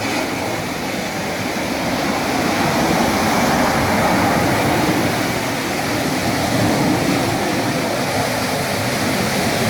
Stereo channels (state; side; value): identical; both; correlation 1.00